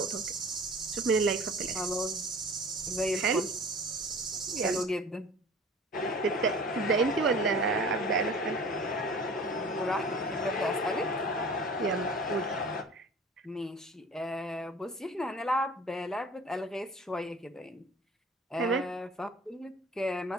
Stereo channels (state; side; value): normal; both; correlation 0.43